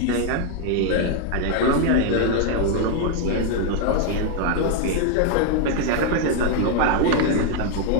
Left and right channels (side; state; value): both; different; correlation 0.00